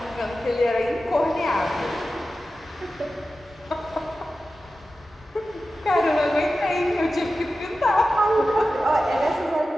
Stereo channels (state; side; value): normal; both; correlation 0.94